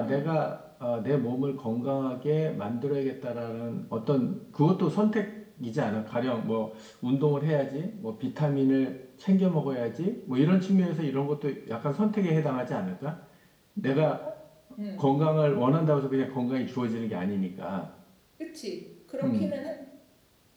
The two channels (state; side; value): identical; both; correlation 1.00